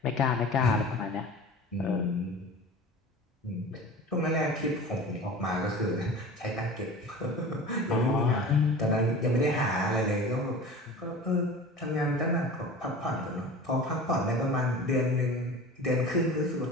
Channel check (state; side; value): normal; both; correlation 0.37